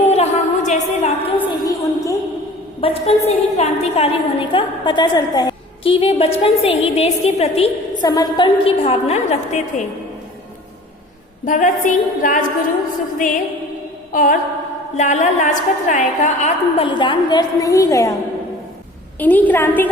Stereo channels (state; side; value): normal; both; correlation 0.45